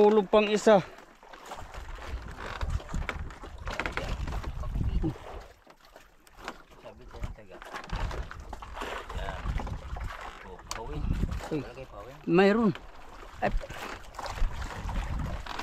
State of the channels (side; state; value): both; identical; correlation 1.00